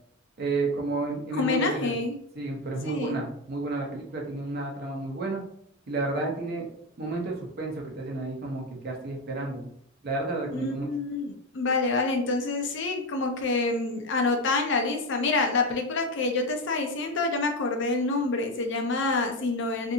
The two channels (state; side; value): normal; both; correlation 0.15